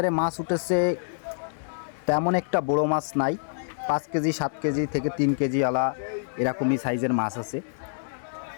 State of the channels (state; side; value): silent; right; 60 dB below the other